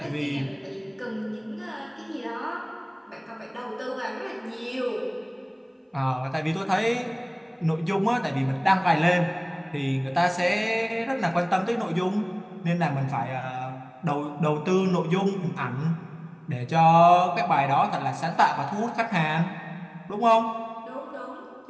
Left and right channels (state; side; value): identical; both; correlation 1.00